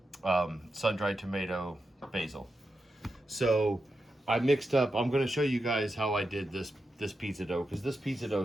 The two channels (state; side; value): normal; both; correlation 0.88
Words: sun-dried tomato, basil. So I mixed up, I'm going to show you guys how I did this pizza dough, because this pizza